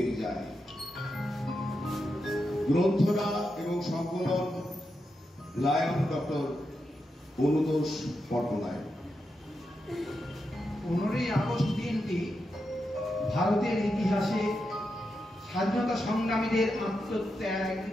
যায়। গ্রন্থনা এবং সংকলন lion doctor Anutosh Patnaik. 15ই August দিনটি ভারতের ইতিহাসে স্বাধীনতা সংগ্রামীদের আত্মত্যাগ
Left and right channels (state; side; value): normal; both; correlation 0.87